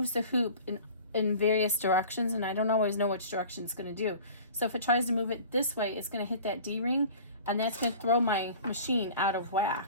the hoop in various directions, and I don't always know which direction it's going to do. So if it tries to move it this way, it's going to hit that D-ring, and that's going to throw my machine out of whack.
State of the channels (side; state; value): both; inverted; correlation -0.42